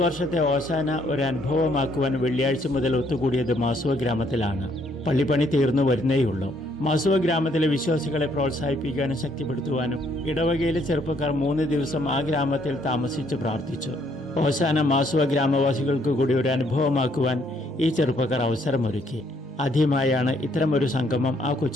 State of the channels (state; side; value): normal; both; correlation 0.68